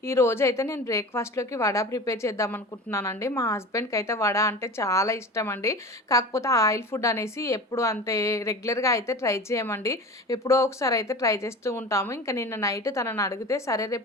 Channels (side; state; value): both; normal; correlation 0.34